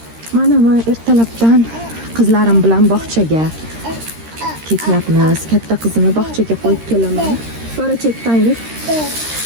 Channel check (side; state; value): left; late; 13 ms